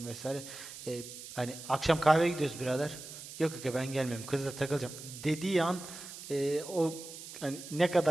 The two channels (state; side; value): noise; right; hiss, 13 dB below the sound